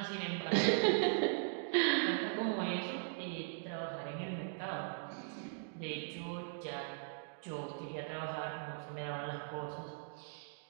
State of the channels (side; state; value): left; silent; digital silence